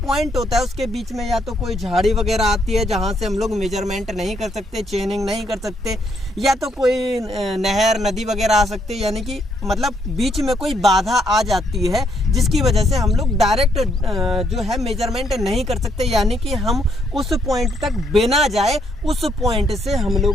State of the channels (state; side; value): normal; both; correlation 0.73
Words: पॉइंट होता है उसके बीच में या तो कोई झाड़ी वगैरह आती है जहाँ से हम लोग मेजरमेंट नहीं कर सकते, चेनिंग नहीं कर सकते, या तो कोई नहर नदी वगैरह आ सकती है, यानी कि मतलब बीच में कोई बाधा आ जाती है जिसकी वजह से हम लोग डायरेक्ट जो है मेजरमेंट नहीं कर सकते, यानी कि हम उस पॉइंट तक बिना जाए उस पॉइंट से हम